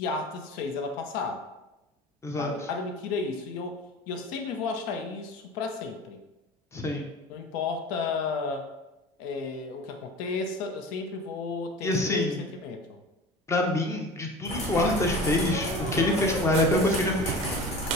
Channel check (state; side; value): normal; both; correlation 0.36